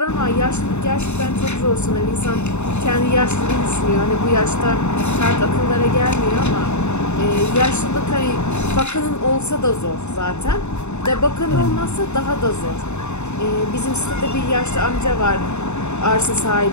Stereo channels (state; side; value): late; right; 0.82 ms